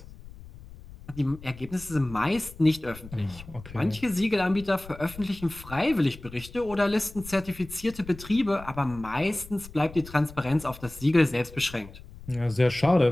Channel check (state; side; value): noise; left; rumble, 17 dB below the sound